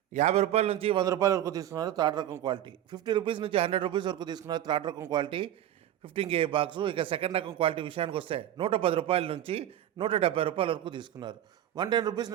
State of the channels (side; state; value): left; quieter; 11.8 dB